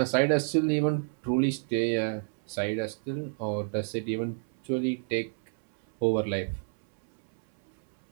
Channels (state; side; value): silent; left; 58 dB below the other